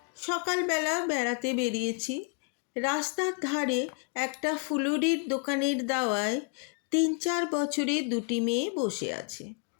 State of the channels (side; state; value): right; quieter; 38.6 dB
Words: সকালবেলা বেড়াতে বেরিয়েছি। রাস্তার ধারে একটা ফুলুরির দোকানের দাওয়ায় ৩-৪ বছরের দুটি মেয়ে বসে আছে।